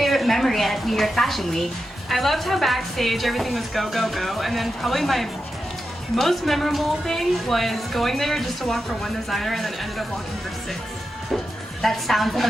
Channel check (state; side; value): normal; both; correlation 0.89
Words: memory at New York Fashion Week? I loved how backstage everything was go, go, go, and then probably my most memorable thing was going there just to walk for one designer and then ended up walking for 6. That sounds